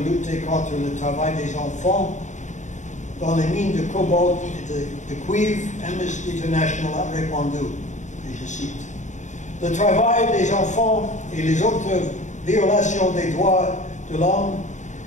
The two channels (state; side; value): late; right; 0.35 ms